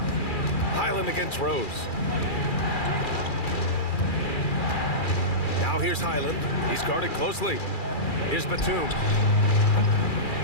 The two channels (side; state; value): right; late; 2.4 ms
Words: Highland against Rose. Now here's Highland. He's guarded closely. Here's Batum.